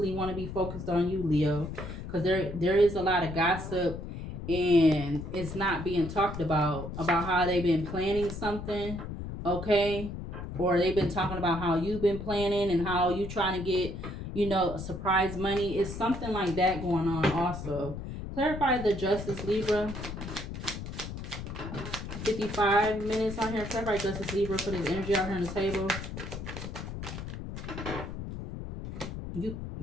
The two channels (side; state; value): left; noise; rumble, 8 dB below the sound